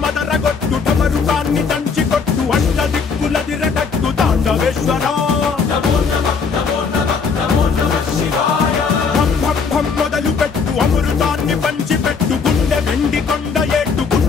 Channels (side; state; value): right; quieter; 5.4 dB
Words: మదరగొట్టు ఢమరుకాన్ని దంచి కొట్టు అంట దిక్కులదిరగట్టు తాండవేశ్వర భం మొదలు పెట్టు అమృతాన్ని పంచి పెట్టు గుండె వెండి కొండ ఏట్టు